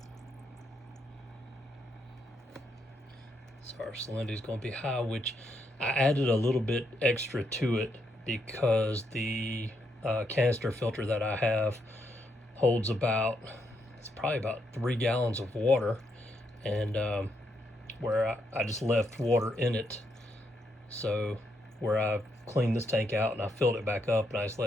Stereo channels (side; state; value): both; normal; correlation 0.78